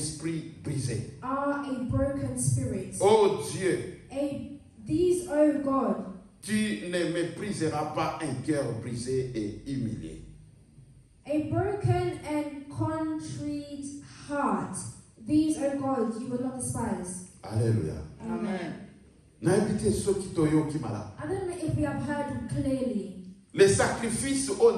brisé. are a broken spirit. Oh Dieu, These, oh God, tu ne mépriseras pas un cœur brisé et humilié. a broken and contrite heart. These, oh God, you will not despise. Alléluia. Amen. Naibite soki toyoki mala. I don't know if we have heard clearly. Les sacrifices o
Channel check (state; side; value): identical; both; correlation 1.00